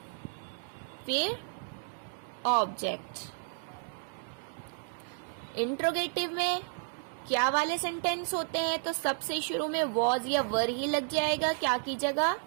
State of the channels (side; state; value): left; silent; 56 dB below the other